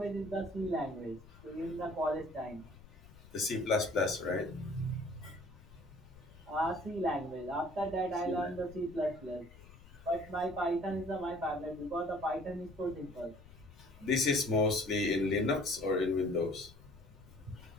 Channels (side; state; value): left; noise; rumble, 20 dB below the sound